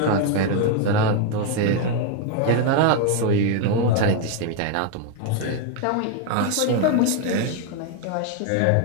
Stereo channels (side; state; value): both; different; correlation 0.01